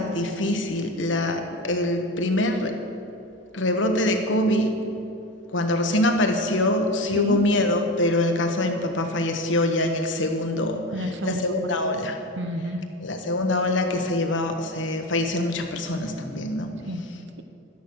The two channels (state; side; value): normal; both; correlation 0.25